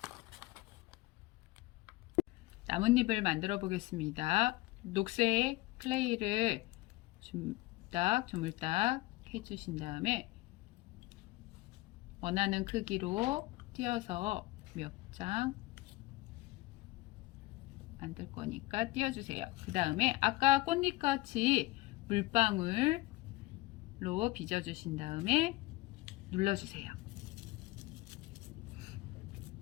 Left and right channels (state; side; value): quieter; right; 19.7 dB